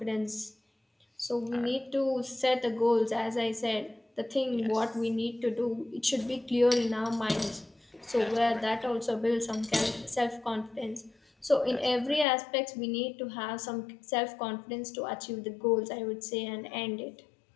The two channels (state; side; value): drops out; right; at 12.2 s